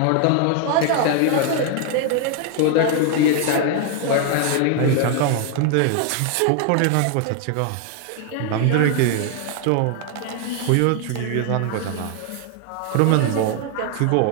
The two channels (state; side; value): different; both; correlation 0.00